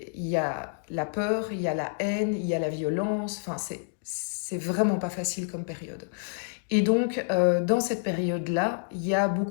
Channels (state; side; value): silent; right; digital silence